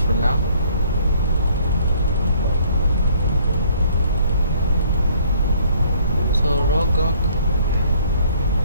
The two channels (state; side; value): inverted; both; correlation -0.60